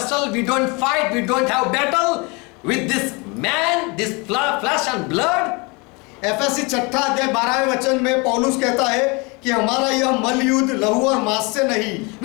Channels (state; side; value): quieter; right; 28.7 dB